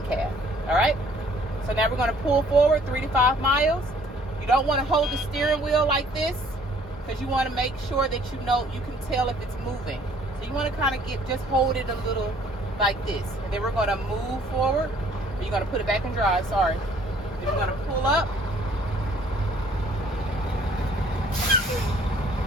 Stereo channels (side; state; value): both; normal; correlation 0.59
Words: All right. So now we're going to pull forward 3 to 5 miles. You don't want to hold the steering wheel like this, because you want to make sure that you can tell if it's moving. So you want to kind of just hold it a little like this. And then we're going to move forward. You're going to put it back in drive, sorry. Then you're going to pull up.